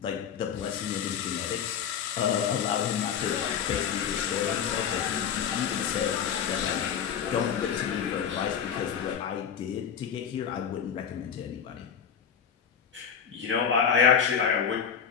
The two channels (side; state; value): right; quieter; 7.7 dB